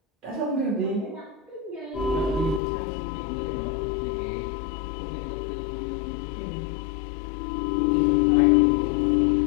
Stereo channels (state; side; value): drops out; right; at 2.6 s